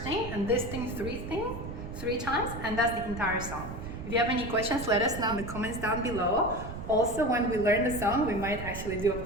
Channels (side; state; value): right; noise; rumble, 8 dB below the sound